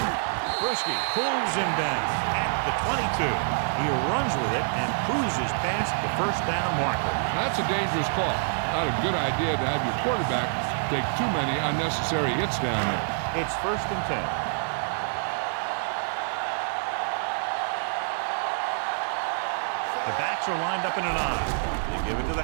Bruschi pulls him down at the 22. He runs with it and cruises past the 1st down marker. That's a dangerous call. Not a good idea to have your quarterback take too many unnecessary hits down there. It's 1st and 10. The backs are lined up in an I. They give it to the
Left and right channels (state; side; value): silent; left; digital silence